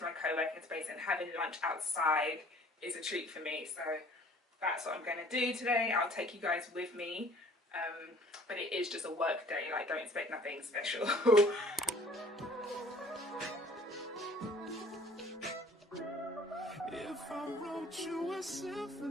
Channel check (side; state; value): both; normal; correlation 0.52